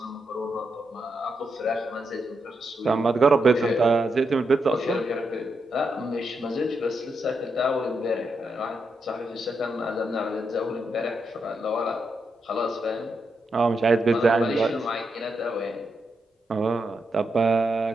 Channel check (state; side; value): normal; both; correlation 0.83